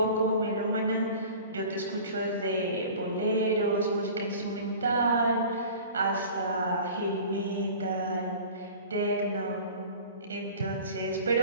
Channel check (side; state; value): both; inverted; correlation -0.42